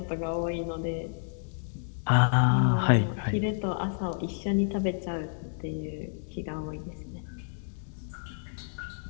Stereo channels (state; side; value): silent; right; digital silence